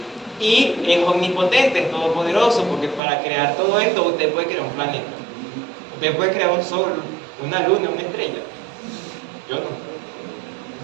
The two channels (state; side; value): drops out; left; at 3.0 s